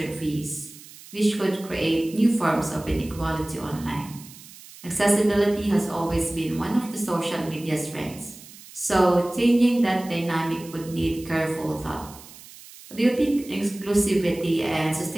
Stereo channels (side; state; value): right; noise; hiss, 19 dB below the sound